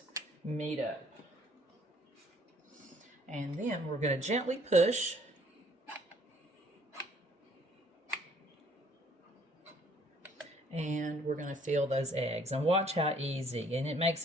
meet up. And then we're going to gently push. And we're going to fill those eggs. And watch how easy. And it makes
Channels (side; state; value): both; normal; correlation 0.61